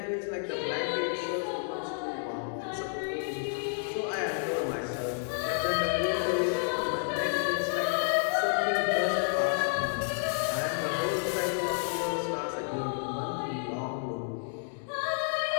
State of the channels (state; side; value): silent; right; digital silence